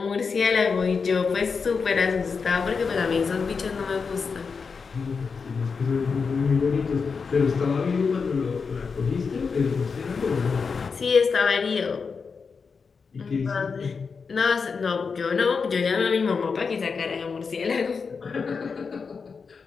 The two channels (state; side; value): quieter; right; 5.3 dB